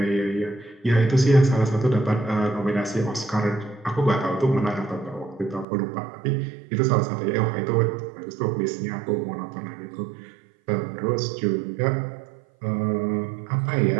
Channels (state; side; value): drops out; left; at 5.7 s